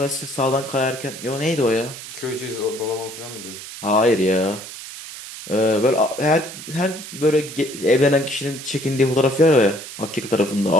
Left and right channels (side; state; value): right; noise; hiss, 12 dB below the sound